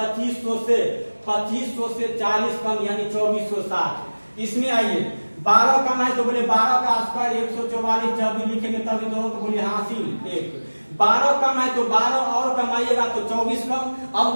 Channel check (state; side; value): inverted; both; correlation -1.00